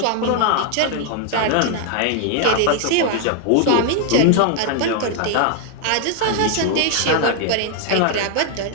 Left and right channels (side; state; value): both; different; correlation 0.00